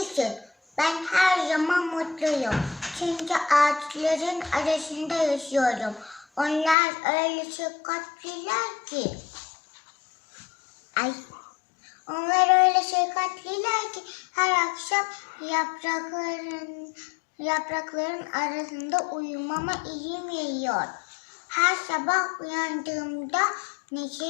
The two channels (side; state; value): right; drops out; at 6.8 s